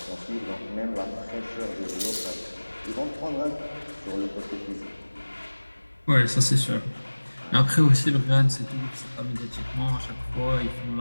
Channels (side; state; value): both; inverted; correlation -1.00